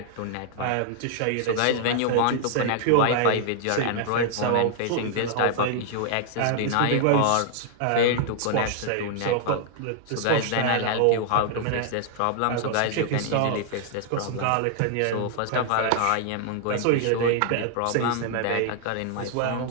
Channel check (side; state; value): both; different; correlation 0.00